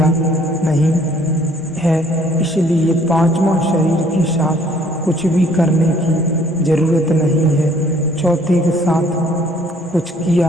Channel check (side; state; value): both; normal; correlation 0.60